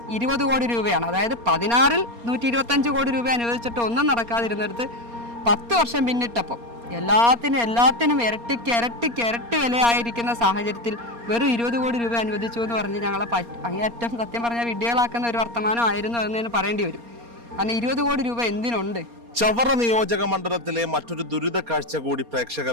20 കോടി രൂപയാണ്. അതായത് 16 125 കോടി രൂപ അനുവദിച്ചിട്ട് ഒന്നും നടക്കാതിരുന്നിടത്ത് 10 വർഷം പിന്നിട്ടപ്പം എല്ലാത്തിനും ഇരട്ടി വിലയായിരിക്കുന്ന സാഹചര്യത്തിൽ വെറും 20 കോടി രൂപ അനുവദിച്ചു എന്ന് പറഞ്ഞ് ഞങ്ങളെ അങ്ങേയറ്റം സത്യം പറഞ്ഞാൽ വിഡ്ഢികളാക്കുന്ന ഒരു വർത്തമാനമായിരുന്നു എന്ന് പറയേണ്ടി വരും. കാരണം 20 കോടി രൂപ എന്തിനുണ്ട്? ചവറ നിയോജക മണ്ഡലത്തിലെ മറ്റൊരു ദുരിത കാഴ്ച കൂടി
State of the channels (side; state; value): left; late; 4.3 ms